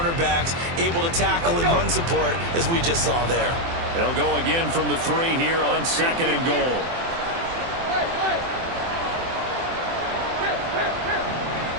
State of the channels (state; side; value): late; left; 24 ms